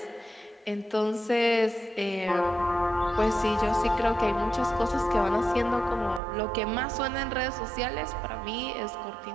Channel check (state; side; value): drops out; left; at 6.2 s